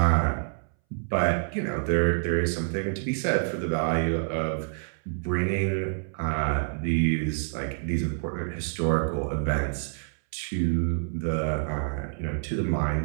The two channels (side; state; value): left; silent; 60 dB below the other